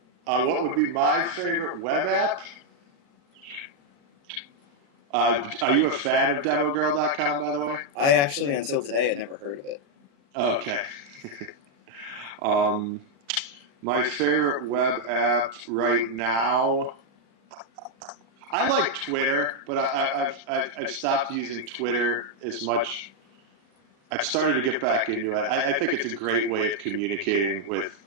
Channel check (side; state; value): left; late; 35 ms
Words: What would be my favorite web app? Are you a fan of demogirl.com, by the way? I actually, until today, had never heard of it. Okay. Um, my favorite web app right now, I like Twitter, but I've stopped using Twitter as much. I've started to get back into it. I think it's a great way of communicating with